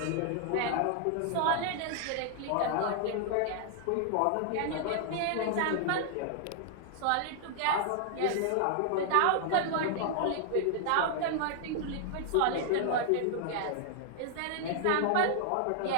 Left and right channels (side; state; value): both; different; correlation -0.01